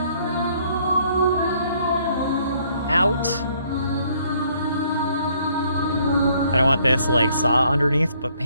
out. I don't want this like saw underneath, but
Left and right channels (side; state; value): both; inverted; correlation -0.65